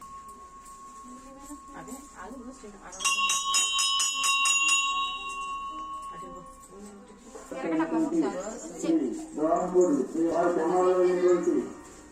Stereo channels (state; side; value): identical; both; correlation 1.00